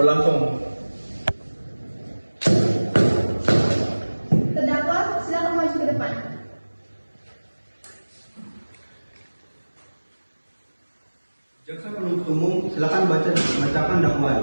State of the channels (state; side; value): inverted; both; correlation -1.00